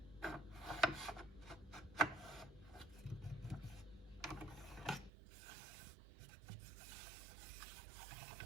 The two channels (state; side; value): drops out; left; at 5.1 s